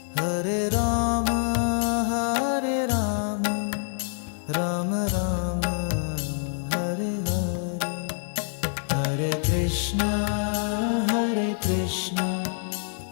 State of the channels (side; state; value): right; silent; digital silence